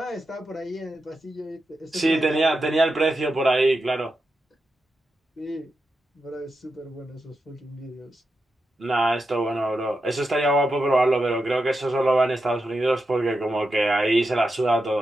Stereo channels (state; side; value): normal; both; correlation 0.88